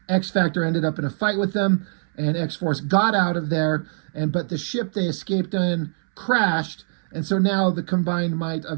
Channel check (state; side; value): silent; left; 63 dB below the other